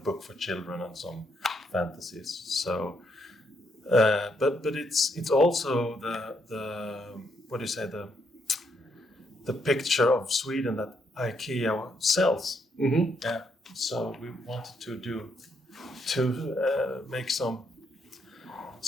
book for children and some fantasies. So, but it's also the picture of Sweden that IKEA sells. Mm-hmm. Yeah. So we wanted to make some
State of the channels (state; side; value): normal; both; correlation 0.75